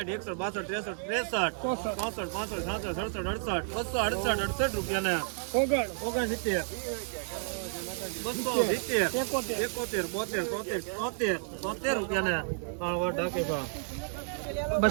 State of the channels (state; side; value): silent; left; 57 dB below the other